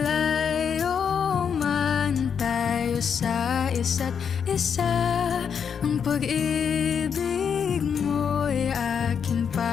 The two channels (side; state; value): right; quieter; 7.1 dB